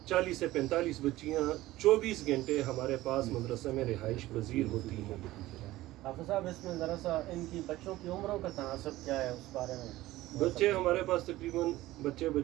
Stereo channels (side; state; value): left; quieter; 16.8 dB